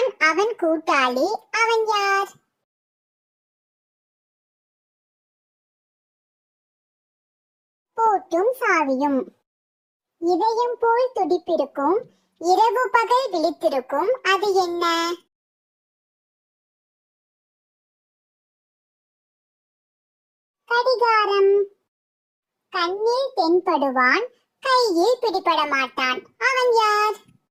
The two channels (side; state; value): both; identical; correlation 1.00